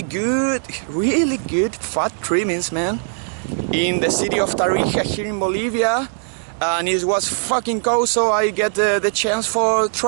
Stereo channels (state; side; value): silent; left; 66 dB below the other